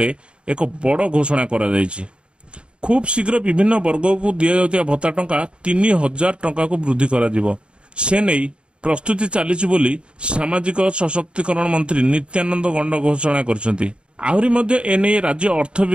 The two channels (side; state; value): left; late; 0.054 ms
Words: एक बड़ घोषणा करा जायछि। खूब शीघ्र विभिन्न वर्ग को दिया जाउतिया भत्ता टंका 3000 टंका को वृद्धि करा जिवो। से नहीं प्रस्तुति चलीछि बोली सामाजिक सशक्तिकरण मंत्री नित्यानंद गंड घोषणा करछंती। आहुरी मध्य एने राज्य अर्थ